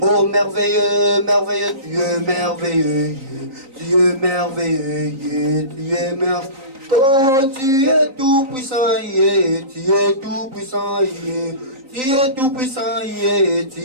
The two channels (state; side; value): late; left; 3.9 ms